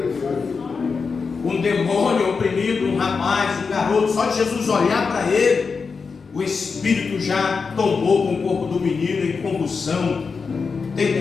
Um demônio oprimido, um rapaz, um garoto, só de Jesus olhar para ele, o espírito já tomou com o corpo do menino em convulsão. Tenta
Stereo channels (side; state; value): right; quieter; 5.1 dB